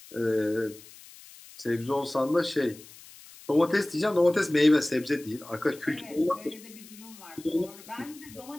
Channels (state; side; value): noise; left; hiss, 20 dB below the sound